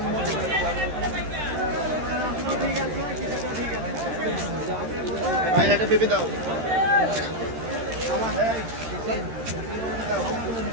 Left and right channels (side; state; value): left; late; 13 ms